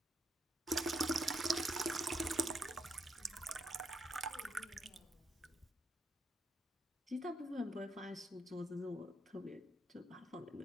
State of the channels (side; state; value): both; normal; correlation 0.78